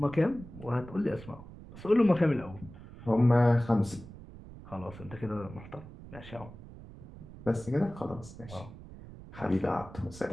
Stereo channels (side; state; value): right; noise; rumble, 16 dB below the sound